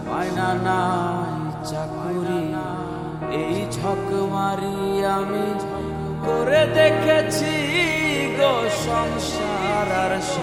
মায়না নাই চাকুরি, এই ঝক মারি আমি করে দেখেছি গো সংসার আর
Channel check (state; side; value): identical; both; correlation 1.00